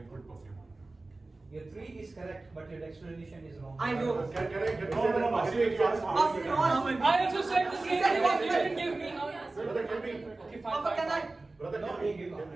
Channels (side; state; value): left; quieter; 3.2 dB